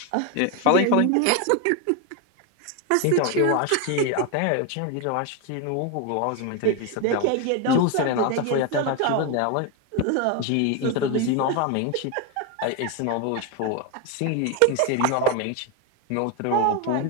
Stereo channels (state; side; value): different; both; correlation 0.02